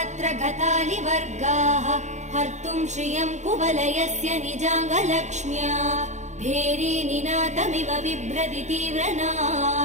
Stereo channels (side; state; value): left; late; 0.34 ms